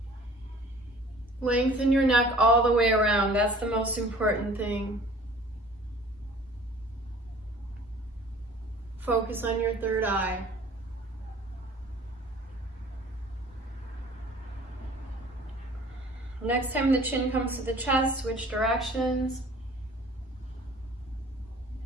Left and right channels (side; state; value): both; normal; correlation 0.49